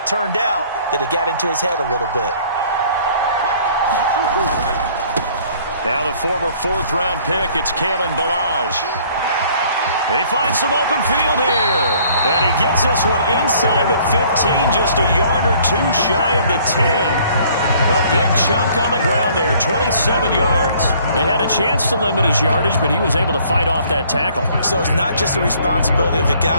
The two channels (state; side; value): inverted; both; correlation -0.58